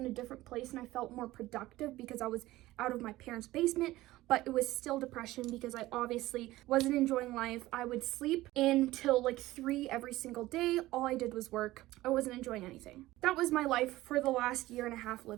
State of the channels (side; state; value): left; quieter; 17.2 dB